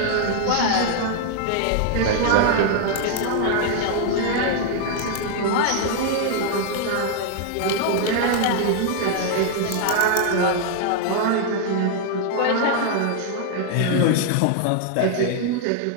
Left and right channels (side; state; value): both; different; correlation 0.00